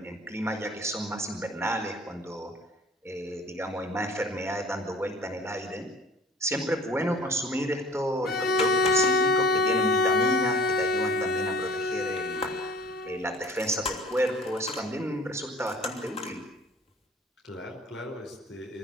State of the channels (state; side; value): normal; both; correlation 0.48